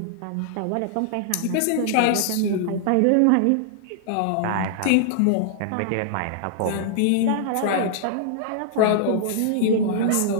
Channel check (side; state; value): both; different; correlation -0.01